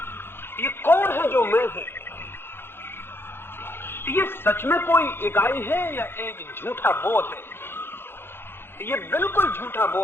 ये कौन है जो मैं है? ये सच में कोई इकाई है या एक झूठा बोध है? ये बिल्कुल झूठा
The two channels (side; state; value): right; late; 0.11 ms